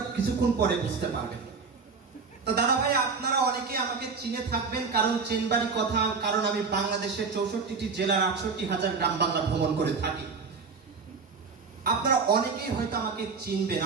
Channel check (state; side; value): quieter; left; 5.0 dB